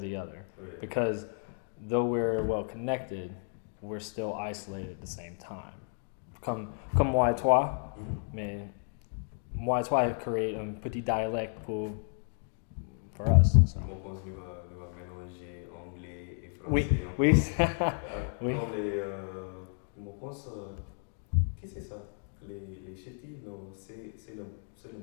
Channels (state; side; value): silent; right; 56 dB below the other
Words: other. Oui. Because though we're well connected, we're still isolated at the same time. Comme moi et toi, Mhm. mais moi et toi créer un petit dialecte pour us. Moi, je pense que nous va mélanger anglais et Oui, français encore. oui. Oui. Comme les. Moi, je pense. Qui c'est ça? Les ch'tis, non, c'est le